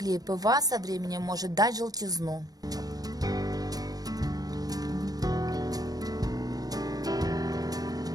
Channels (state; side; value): late; left; 0.18 ms